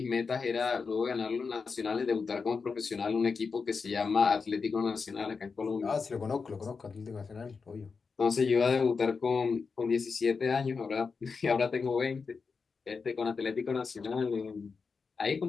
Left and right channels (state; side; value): quieter; right; 5.0 dB